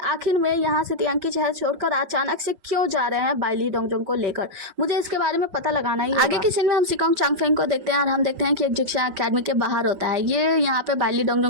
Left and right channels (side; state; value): left; late; 5.4 ms